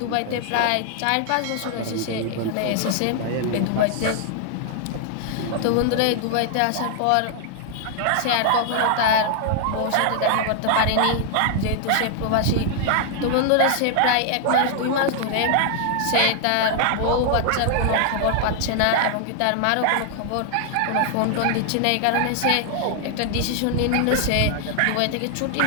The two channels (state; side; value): different; both; correlation 0.00